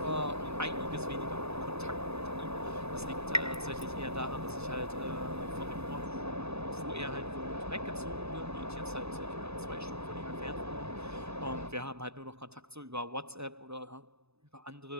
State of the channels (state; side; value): late; left; 0.79 ms